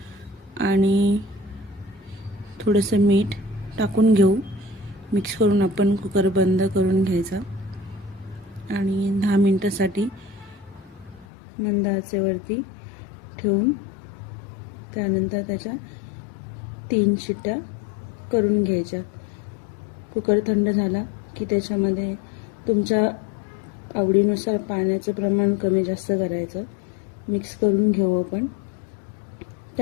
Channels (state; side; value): drops out; right; at 11.2 s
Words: आणि थोडंसं मीठ टाकून घेऊ. मिक्स करून आपण कुकर बंद करून घ्यायचा आणि 10 मिनिटासाठी मंद आचेवरती ठेवून त्यानंतर त्याच्या 3 शिट्ट्या करून घ्यायच्या. कुकर थंड झाला की त्याच्यामध्ये तुमच्या आवडीनुसार पाण्याचं प्रमाण कमी जास्त करायचं. मिक्स करून घेऊ आपण.